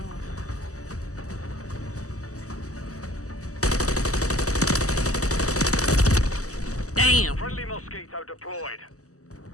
Damn. Friendly Mosquito deployed.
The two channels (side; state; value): right; late; 0.66 ms